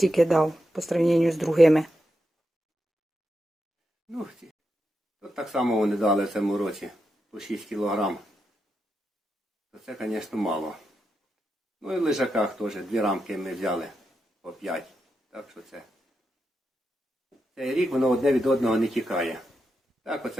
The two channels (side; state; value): both; normal; correlation 0.86